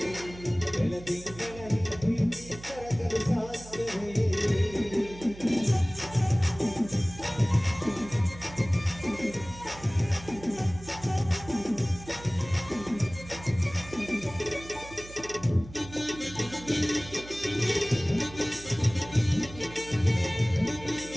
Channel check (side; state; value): right; noise; hum, 16 dB below the sound